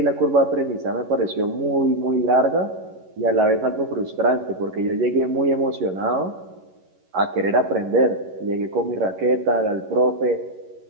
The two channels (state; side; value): late; left; 11 ms